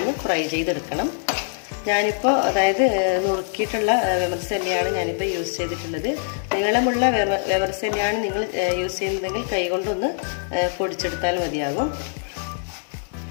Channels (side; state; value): right; silent; digital silence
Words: ഫ്രൈ ചെയ്തെടുക്കണം. ഞാനിപ്പോൾ അതായത് നുറുക്കിയിട്ടുള്ള വെമർസെല്ലിയാണ് ഞാനിപ്പോൾ യൂസ് ചെയ്തിട്ടുള്ളത്. നീളമുള്ള വെമർസെല്ലിയാണ് നിങ്ങൾ യൂസ് ചെയ്യുന്നതെങ്കിൽ കൈകൊണ്ടൊന്ന് പൊടിച്ചെടുത്താൽ മതിയാകും.